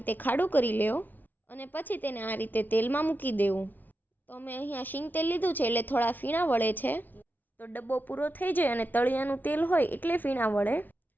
ખાડું કરી લેવો અને પછી તેને આ રીતે તેલમાં મૂકી દેવું. તો અમે અહીંયા શીંગ તેલ લીધું છે એટલે થોડા ફીણા વળે છે. તો ડબ્બો પૂરો થઈ જાય અને તળિયાનું તેલ હોય એટલે ફીણા વળે.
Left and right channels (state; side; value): late; right; 0.085 ms